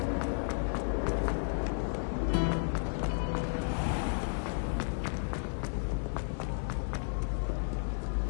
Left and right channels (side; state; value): right; silent; digital silence